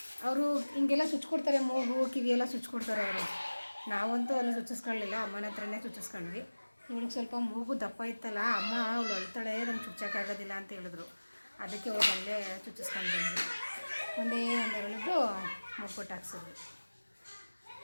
ಅವರು ಹಿಂಗೆಲ್ಲ ಚುಚ್ಕೊಡ್ತಾರೆ, ಮೂಗು ಕಿವಿ ಎಲ್ಲ ಚುಚ್ಕೊಡ್ತಾರೆ ಅವರು. ನಾವಂತೂ ಅಲ್ಲಿ ಚುಚ್ಚಿಸ್ಕೊಳ್ಳಿಲ್ಲ, ಅಮ್ಮನ ಹತ್ರನೇ ಚುಚ್ಚಿಸ್ಕೊಂಡ್ವಿ. ಇವಳಿಗೆ ಸ್ವಲ್ಪ ಮೂಗು ದಪ್ಪ ಇತ್ತಲ್ಲ, ಅಮ್ಮ ಅವಳು ಅಳ್ತಾಳೆ, ನಂಗೆ ಚುಚ್ಚೋಕ್ಕಾಗೋದಿಲ್ಲ ಅಂತ ಹೇಳಿದ್ರು, ಅದಕ್ಕೆ ಹೋಗಿ ಅಲ್ಲೇ ಚುಚ್ಚಿಸ್ಕೊಂಡು ಬಂದ್ವಿ. ಒಂದೆರಡು ಮೂಗು ಕೊಟ್ಟು ಹಾಕ್ಸಿದ್ವಿ.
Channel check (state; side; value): inverted; both; correlation -1.00